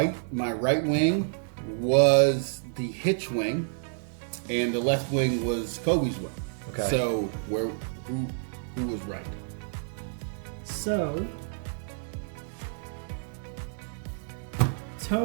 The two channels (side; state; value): left; silent; 59 dB below the other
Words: my right wing was the Hitch wing, and the left wing was Colby's wing. Okay. So who was right? So,